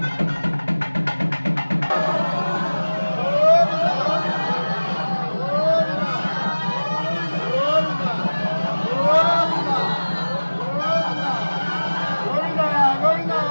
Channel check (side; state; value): both; inverted; correlation -1.00